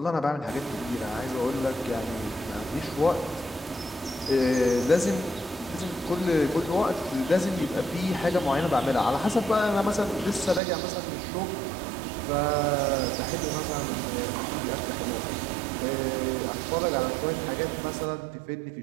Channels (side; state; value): left; drops out; at 10.6 s